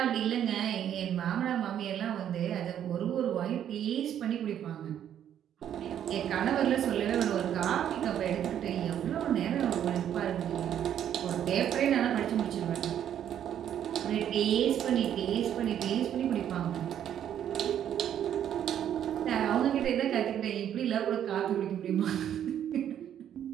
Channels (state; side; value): quieter; left; 10.0 dB